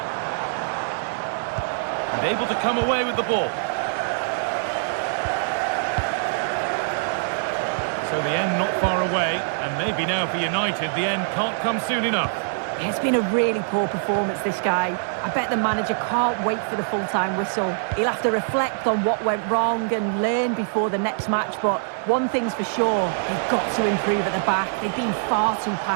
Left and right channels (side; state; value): left; silent; 63 dB below the other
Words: And able to come away with the ball. So the end not far away, and maybe now for United, the end can't come soon enough. It's been a really poor performance, this guy. I bet the manager can't wait for the full-time whistle. He'll have to reflect on what went wrong and learn before the next match, but one thing's for sure, they've got to improve at the back. They've been far too